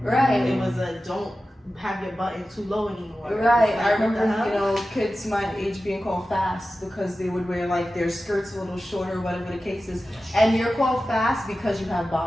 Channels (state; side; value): normal; both; correlation 0.94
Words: right, it was a don't have your button too low anymore. Right, Like, I remember, what the hell? you know, kids my age being called fast because they would wear like their skirts a little shorter, whatever the case is. And you're called fast because you have